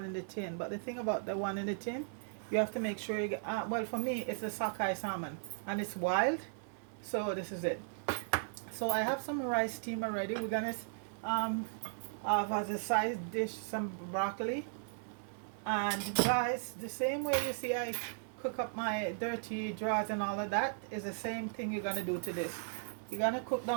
in the tin. But the thing about the one in the tin, you have to make sure you get. Well, for me, it's a sockeye salmon, and it's wild. So this is it. So I have some rice steam already. We're gonna um, have as a side dish some broccoli. And guys, the same way you see I cook up my dirty drawers and all of that is the same thing you're gonna do to this. You're gonna cook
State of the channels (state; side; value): silent; left; 53 dB below the other